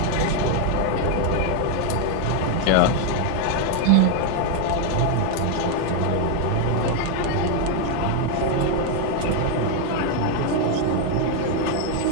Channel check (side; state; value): both; different; correlation 0.01